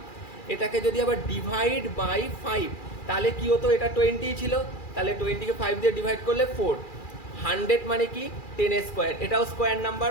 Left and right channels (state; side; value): late; right; 2.4 ms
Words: এটাকে যদি আবার ডিভাইড বাই 5 তাহলে কি হতো, এটা 20 ছিল, তাহলে 20কে 5 দিয়ে ডিভাইড করলে 4। 100 মানে কি, 10 স্কোয়ার, এটাও স্কোয়ার নাম্বার।